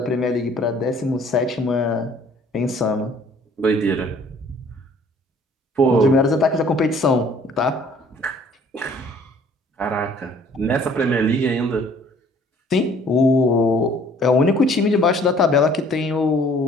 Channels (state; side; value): normal; both; correlation 0.56